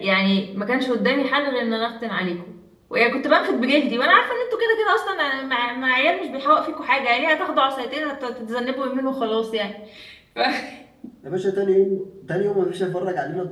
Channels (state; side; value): identical; both; correlation 1.00